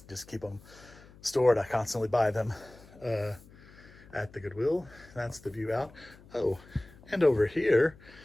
just keep them stored. I constantly buy them at the Goodwill. That's the view out. Oh, and over here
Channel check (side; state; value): left; noise; hum, 23 dB below the sound